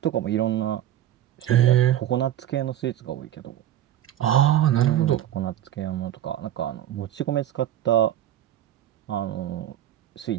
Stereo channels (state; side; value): quieter; left; 11.8 dB